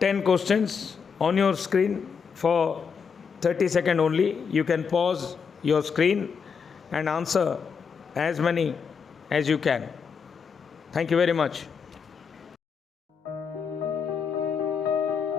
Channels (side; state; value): right; quieter; 6.1 dB